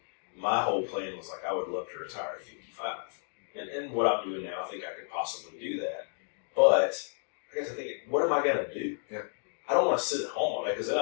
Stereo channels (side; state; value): right; silent; 57 dB below the other